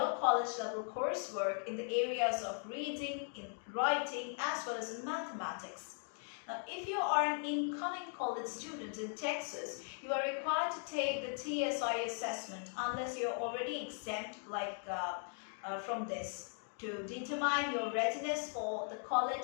college level coursework in the areas of reading, in writing, as well as in mathematics. Now, if you are an incoming college student in Texas, you are required to take the TSI assessment unless you're already exempt from this, to determine your readiness for the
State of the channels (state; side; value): silent; right; 52 dB below the other